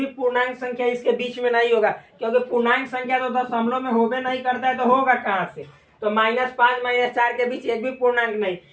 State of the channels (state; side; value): identical; both; correlation 1.00